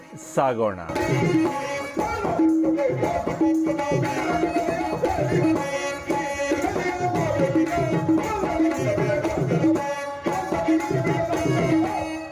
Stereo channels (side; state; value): both; identical; correlation 1.00